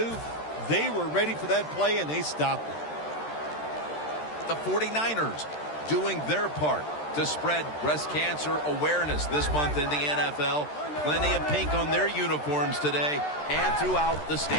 They were ready for that play, and they stopped it. The 49ers doing their part to spread breast cancer awareness this month in the NFL. Plenty of pink on their uniforms today and throughout the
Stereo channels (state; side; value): late; right; 13 ms